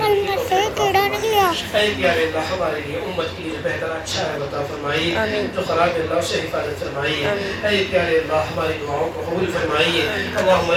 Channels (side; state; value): both; identical; correlation 1.00